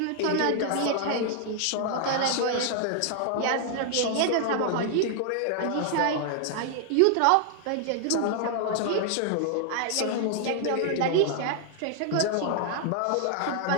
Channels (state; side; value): different; both; correlation 0.00